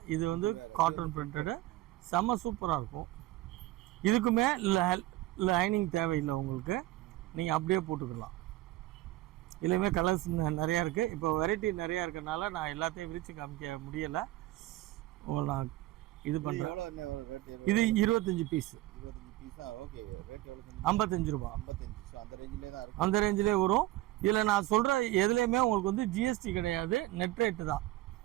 இது வந்து காட்டன் பிரிண்டடு. செம்ம சூப்பராக இருக்கும். இதுக்குமே லைனிங் தேவையில்லை உங்களுக்கு, நீங்கள் அப்படியே போட்டுக்கலாம். இதுலேயுமே கலர்ஸ் நிறையா இருக்குது. இப்போ வெரைட்டி நிறையா இருக்கிறனால நான் எல்லாத்தையும் விரித்து காமிக்க முடியலை. நான் இது பண்ணுறேன். இது 25 பீஸ், 25 பீஸா? ஓகே. ரேட் எவ்வளோ? 55 ரூபா. 55. ஸோ அந்த ரேஞ்சிலே தான் இருக்கும். அந்த ரேஞ்சிலே வரும். இதில் நான் சொல்கிற எதுலேயுமே உங்களுக்கு வந்து ஜிஎஸ்டி கிடையாது, நெட் ரேட்டு தான்.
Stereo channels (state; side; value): quieter; left; 17.0 dB